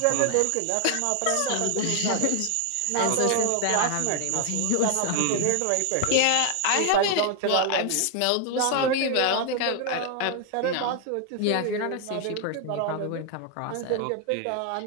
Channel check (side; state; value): both; different; correlation 0.01